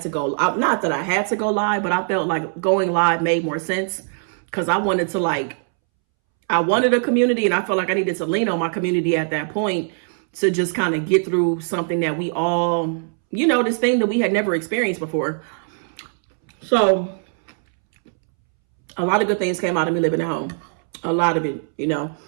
to go, not that I had to go live, but I felt like going live made more sense because I wanted to like, I wanted a community and I felt like I needed to lean on my community at that point to just kind of get through something that we all, you know, this thing that we had never experienced before. So a lot of good things came out of me living at home. A lot of it, you know.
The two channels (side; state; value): left; silent; 65 dB below the other